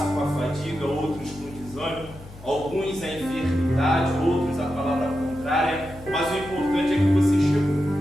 com a fadiga, outros com desânimo, alguns a enfermidade, outros a palavra contrária, mas o importante é que você chegou.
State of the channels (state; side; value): noise; left; hum, 18 dB below the sound